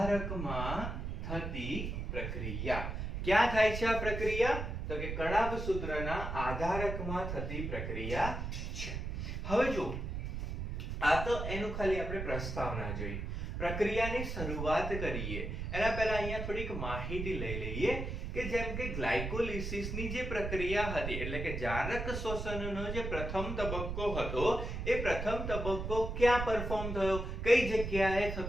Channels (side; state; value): right; noise; rumble, 4 dB below the sound